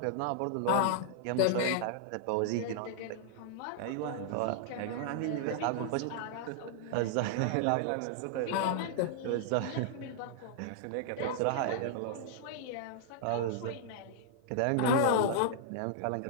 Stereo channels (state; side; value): different; both; correlation -0.01